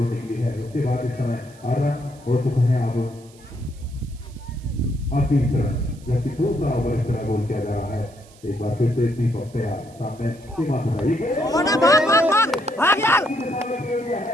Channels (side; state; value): right; noise; hiss, 26 dB below the sound